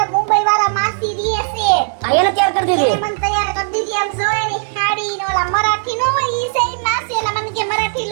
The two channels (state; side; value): silent; left; 64 dB below the other